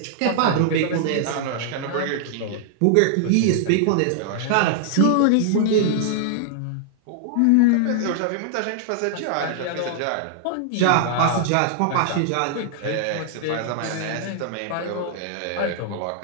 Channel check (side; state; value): both; different; correlation -0.01